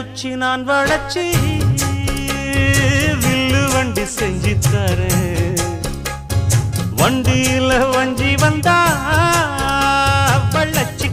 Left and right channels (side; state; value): both; identical; correlation 1.00